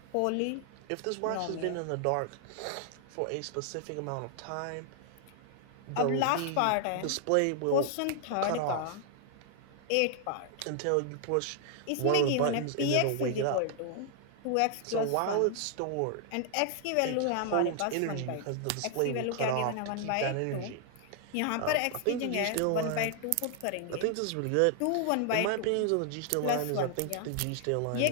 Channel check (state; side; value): different; both; correlation 0.00